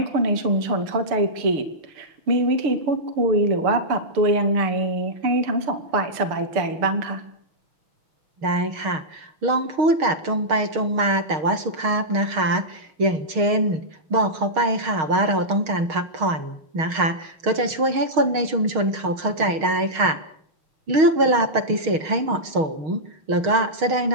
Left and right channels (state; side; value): late; left; 6.4 ms